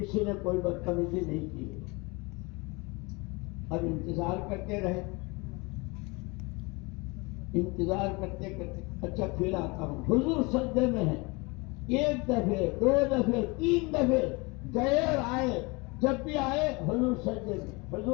نے کوئی بدتمیزی نہیں کی. اب انتظار کرتے رہے، انتظار کرتے کرتے اچھا پھر آتا ہوں. حضور سجدے میں ہیں. ایک دفعے، دو دفعے، تین دفعے گئے اور آئے. جب بھی آئے حضور سجدے میں،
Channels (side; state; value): right; quieter; 26.9 dB